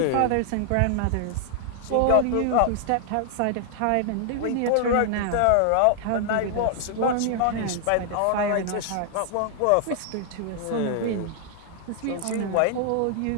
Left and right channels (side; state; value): both; different; correlation 0.00